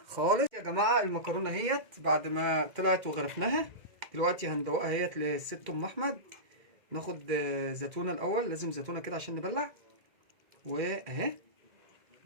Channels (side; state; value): left; late; 2.1 ms